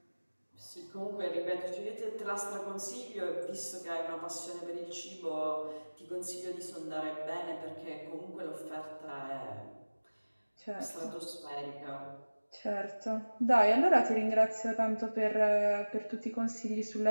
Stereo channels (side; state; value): both; inverted; correlation -1.00